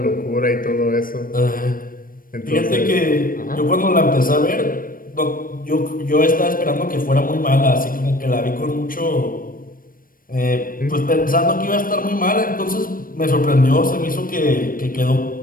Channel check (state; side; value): late; right; 0.41 ms